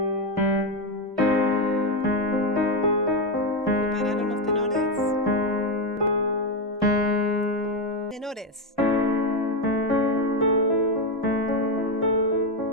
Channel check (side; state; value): both; normal; correlation 0.09